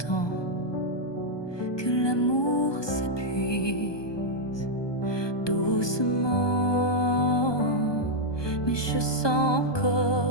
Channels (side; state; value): right; late; 1.2 ms